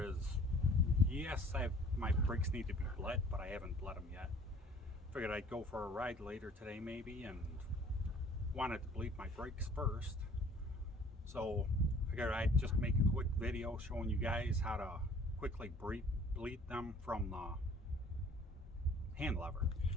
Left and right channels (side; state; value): both; normal; correlation 0.53